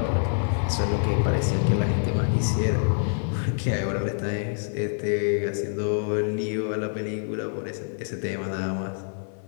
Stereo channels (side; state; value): right; silent; digital silence